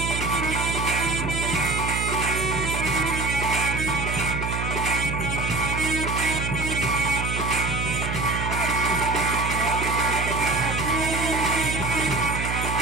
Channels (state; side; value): noise; right; hum, 3 dB below the sound